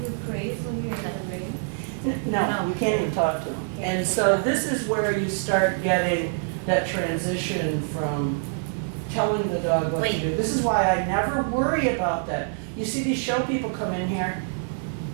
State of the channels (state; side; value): silent; left; 61 dB below the other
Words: you praise when you're in the ring? No, you can't even talk to him. And so this is where you start getting that transition from telling the dog what to Wait. do. This is why I never worry about that. You see these show people come in here?